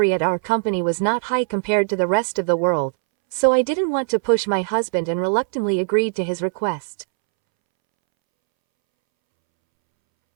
at our company was not high compared to the rest of the world, so I didn't want to push my husband and reluctantly agreed to his request.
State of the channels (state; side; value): silent; left; 65 dB below the other